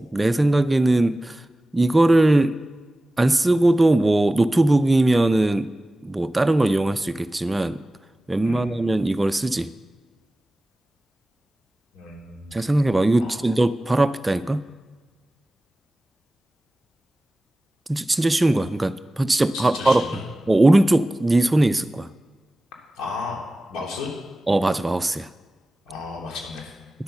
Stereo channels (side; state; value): both; normal; correlation 0.97